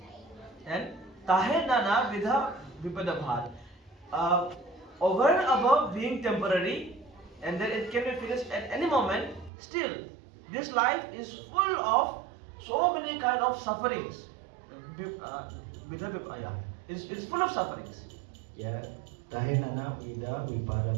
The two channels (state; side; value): drops out; left; at 9.5 s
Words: And tahe nana vidha vipada bha. Over and above being temporary, and then it can be finished at any moment. Still, this life is full of so many kind of sufferings. It's full of sufferings. Ya, tahe nana vida vipada